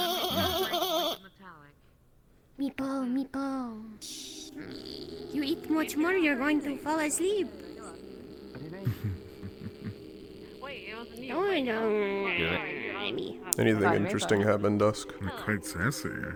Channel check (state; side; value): identical; both; correlation 1.00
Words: Meepo. You eat much more, you're going to fall asleep. Oh no. Anything interesting happen, Dusk? You're quite sassy,